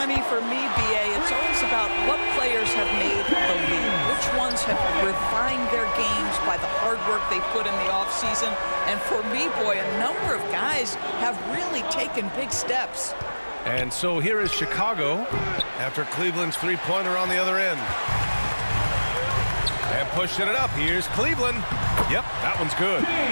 mean, for me, B.A., it's always about what players have made the leap. Which ones have refined their games by the hard work they put in the offseason. And for me, boy, a number of guys have really taken big steps. And so here is Chicago after Cleveland's three-pointer on the other end. And pushing it up, here's Cleveland. Yep, that one's good.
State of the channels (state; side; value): inverted; both; correlation -1.00